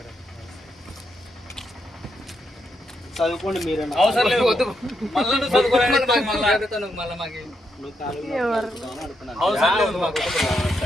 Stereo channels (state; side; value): normal; both; correlation 0.80